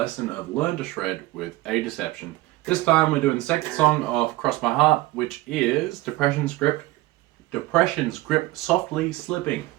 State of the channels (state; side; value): quieter; left; 19.1 dB